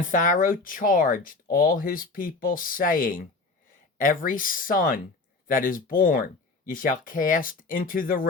Pharaoh charged all his people, saying, Every son that is born ye shall cast into the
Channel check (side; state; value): right; quieter; 3.7 dB